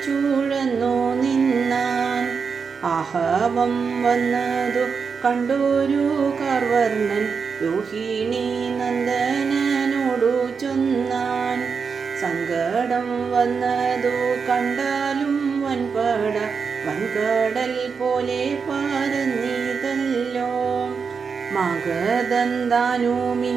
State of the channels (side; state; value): left; quieter; 5.6 dB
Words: ചൂഴന്നു നിന്നാൻ. ആഹവം വന്നതു കണ്ടൊരു കാർവർണ്ണൻ രോഹിണി നന്ദനോടു ചൊന്നാൻ. സങ്കടം വന്നതു കണ്ടാലും വൻപട വൻകടൽ പോലെ പരന്നിതല്ലോ. മഗധൻ